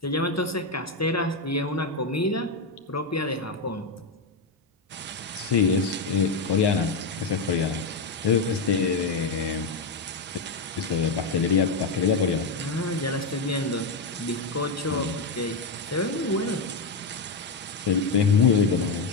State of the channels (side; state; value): right; quieter; 3.7 dB